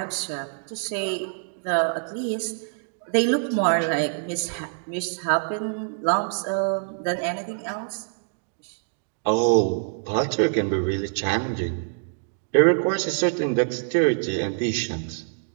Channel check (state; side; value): silent; left; digital silence